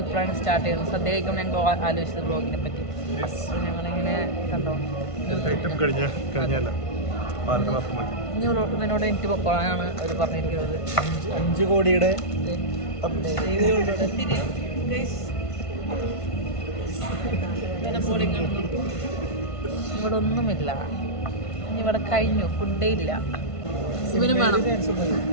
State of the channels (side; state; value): right; late; 1.5 ms